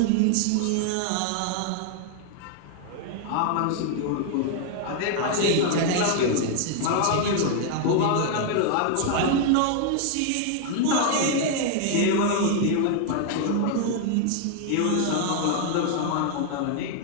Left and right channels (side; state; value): both; different; correlation 0.00